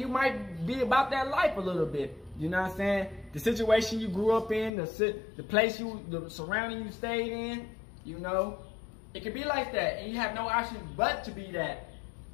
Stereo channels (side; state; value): right; drops out; at 4.7 s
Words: might be about that life a little bit. You know what I'm saying? The situation you grew up in, the place the surrounding you stayed in, you know, it could be like that, and you have no option but to be that.